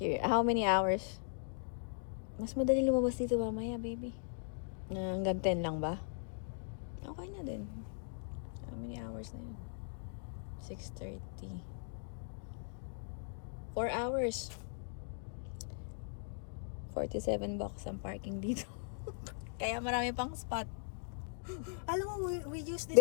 How many hours? Mas madali lumabas dito mamaya, baby. Hanggang 10 lang ba? Okay na din. How many hours na yun? 6:30. 4 hours. $47 ang parking dito. Kaya marami pang spot. Alam mo, we used this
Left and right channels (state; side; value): silent; right; digital silence